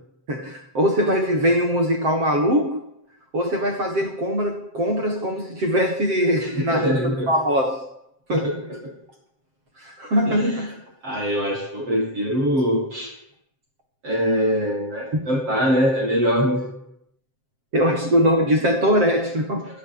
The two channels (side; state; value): left; late; 7.6 ms